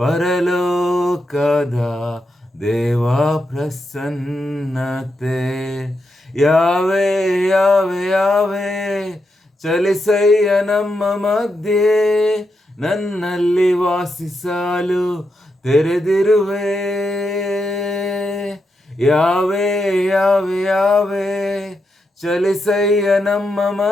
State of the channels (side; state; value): both; normal; correlation 0.84